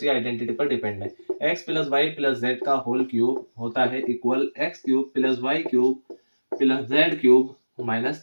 आइडेंटिटी पर डिपेंड है। x plus Y plus Z का होल क्यूब होता है equal x³ plus y³ plus z³ minus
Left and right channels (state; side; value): inverted; both; correlation -1.00